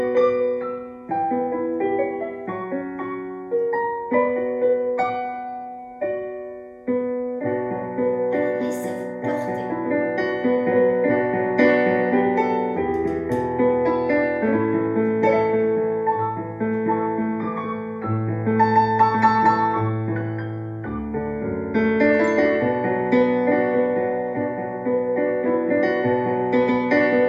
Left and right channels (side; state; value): both; identical; correlation 1.00